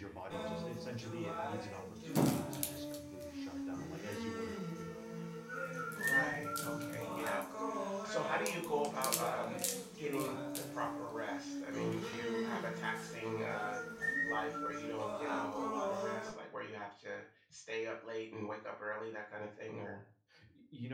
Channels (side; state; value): both; identical; correlation 1.00